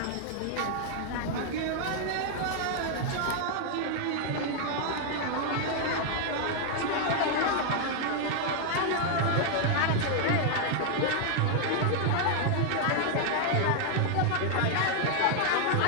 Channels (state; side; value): different; both; correlation 0.00